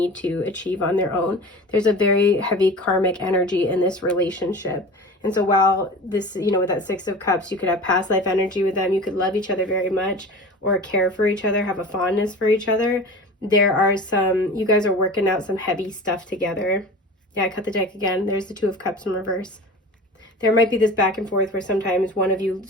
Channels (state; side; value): normal; both; correlation 0.35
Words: to achieve on their own. There's a very heavy karmic energy in this relationship. And so while this, you know, with that Six of Cups, you could have past life energy with them, you could love each other very much or care for each other, have a fondness for each other. There are you guys are working out some heavy stuff together. Yeah, I cut the deck again. There's the Two of Cups in reverse. There might be this back and forth where sometimes one of you